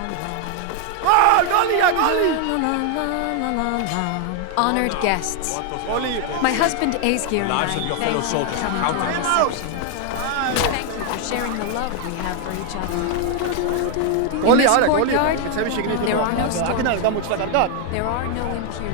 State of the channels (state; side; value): different; both; correlation 0.00